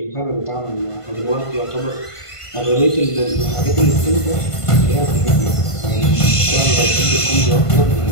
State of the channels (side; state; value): right; late; 1.5 ms